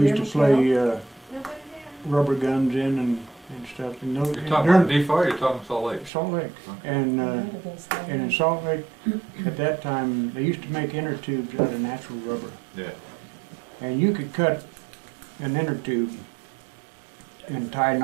there? used to Michelle? play rubber guns in and stuff. And those, You're talking about Nephi or you're talking Salt Lake? Salt Lake. Okay. And Might have been Salt in Lake. Salt Lake, at that time, they used to make inner tubes out of natural rubber. Yeah. And you could cut an inner tube and tie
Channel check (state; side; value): drops out; left; at 6.1 s